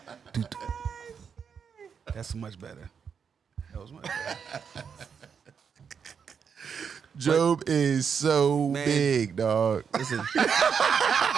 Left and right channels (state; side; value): quieter; left; 6.7 dB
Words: That's much better. That was much better. Job is so Man. big, dog. Listen,